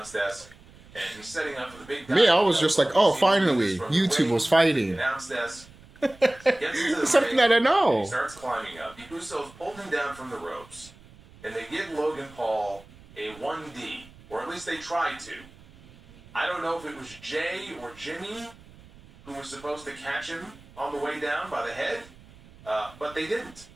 desk, and he's setting up for the big... Me, I was just like, oh, finally, YouTube was fighting. Announce desk. Gets into the Something ring, that I know. and he starts climbing up. The Usos pulled him down from the ropes, and they give Logan Paul a 1D, or at least they tried to. I don't know if it was Jay or Jimmy who was supposed to catch him on the way down by the head, but they didn't.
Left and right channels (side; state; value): right; noise; rumble, 23 dB below the sound